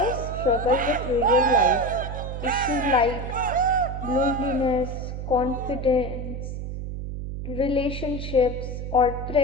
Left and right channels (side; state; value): right; noise; hum, 6 dB below the sound